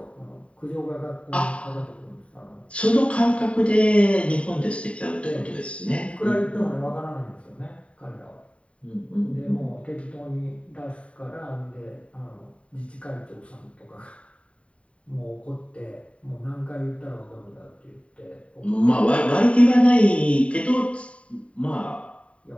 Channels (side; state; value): right; late; 0.062 ms